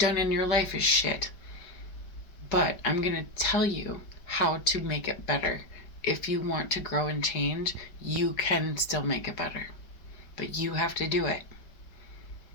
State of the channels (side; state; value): right; late; 4.9 ms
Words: in your life is shit. But I'm going to tell you how to make it better. If you want to grow and change, you can still make it better. But you have to do it.